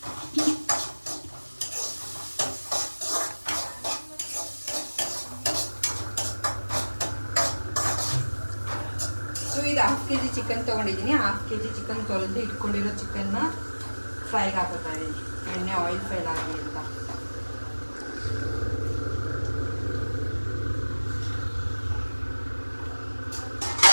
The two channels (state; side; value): inverted; both; correlation -1.00